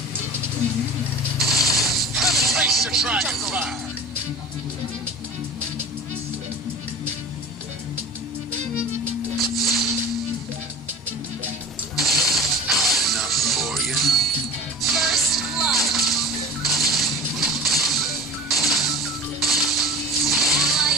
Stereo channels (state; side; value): normal; both; correlation 0.39